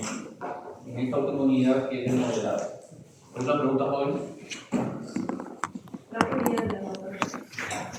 esta oportunidad que es el modelado. ¿Alguna pregunta, joven? La teoría de la naturaleza.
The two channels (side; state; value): both; identical; correlation 1.00